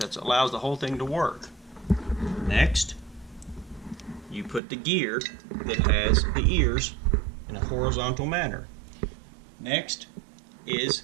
allows the whole thing to work. Next, you put the gear that has the ears in a horizontal manner. Next is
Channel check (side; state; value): left; drops out; at 4.6 s